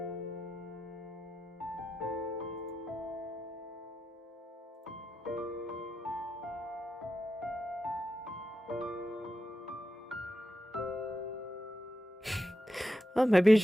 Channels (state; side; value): normal; both; correlation 0.88